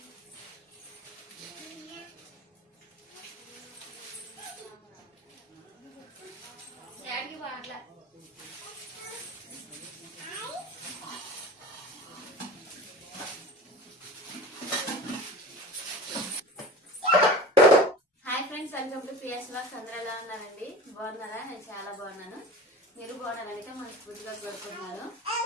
welcome to Priya's vlogs. అందరూ ఎలా ఉన్నారండి? బాగున్నారా? నేను చాలా బాగున్నాను. మీరు బాగున్నారైతే మనస్ఫూర్తిగా కోరుకుంటున్నాను.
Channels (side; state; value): both; normal; correlation 0.35